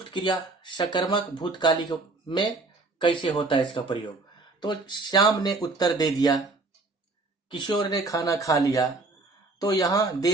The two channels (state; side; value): quieter; left; 3.4 dB